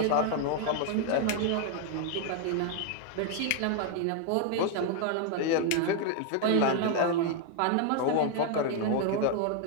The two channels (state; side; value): different; both; correlation 0.00